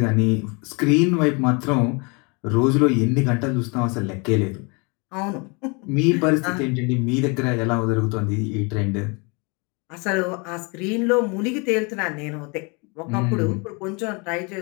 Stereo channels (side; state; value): right; quieter; 31.0 dB